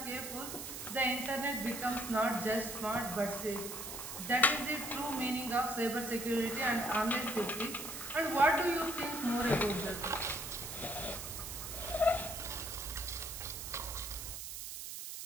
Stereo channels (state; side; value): noise; right; hiss, 7 dB below the sound